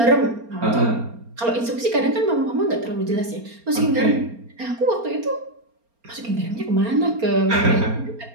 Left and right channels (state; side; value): late; left; 4.3 ms